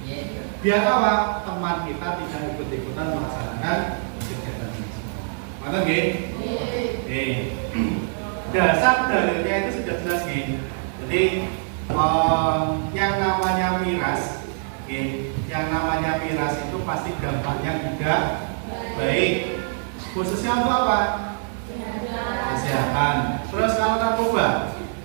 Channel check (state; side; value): silent; left; 62 dB below the other